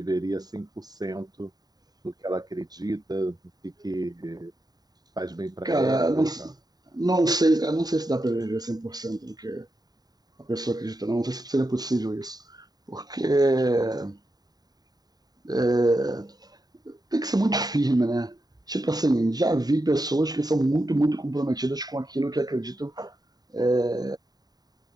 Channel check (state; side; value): late; left; 0.19 ms